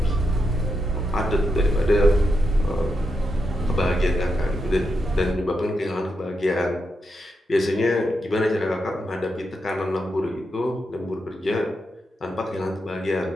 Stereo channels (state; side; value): normal; both; correlation 0.85